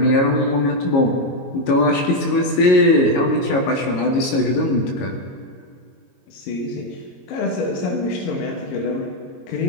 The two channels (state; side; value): late; right; 22 ms